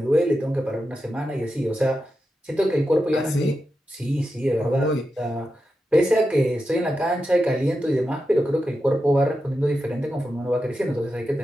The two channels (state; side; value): normal; both; correlation 0.89